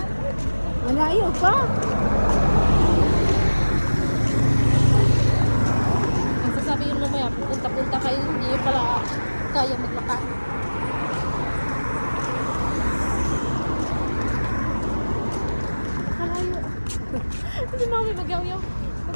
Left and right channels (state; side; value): inverted; both; correlation -1.00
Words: Malayo pa. Ang sasabihin mo maya, punta-punta kayo, hindi nyo pala kaya maglakad. Malayo. Hindi mami magyaw-yaw.